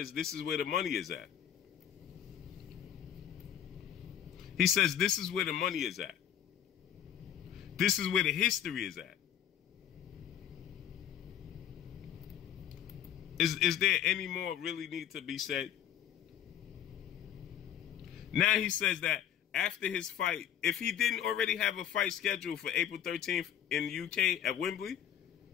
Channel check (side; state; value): right; quieter; 10.1 dB